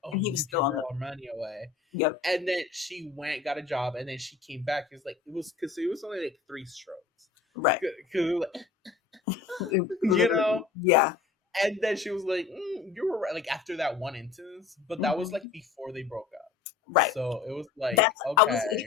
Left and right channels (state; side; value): quieter; right; 5.3 dB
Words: "Oh, and he you was give still your on girl the, our money away," yep. and then she went got a job, and then she came back. It's like it was because it was only like three strokes, Right. because you Literally, know. yeah. And then she was like, "You were right." Like after that one instance, but that was like Mhm. before they broke up. Right. So it was like, That's, I was